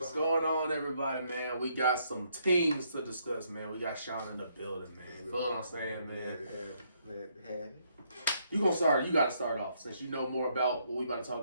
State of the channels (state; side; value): inverted; both; correlation -0.72